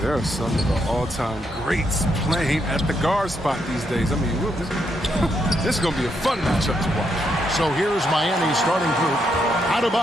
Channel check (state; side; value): normal; both; correlation 0.78